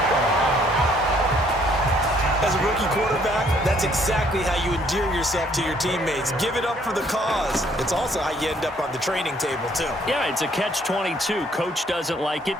As a rookie quarterback, that's exactly how you endear yourself to your teammates. Give it up for the cause. It's also how you end up on the training table, too. Yeah, it's a catch-22. Coach doesn't like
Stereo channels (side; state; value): both; normal; correlation 0.64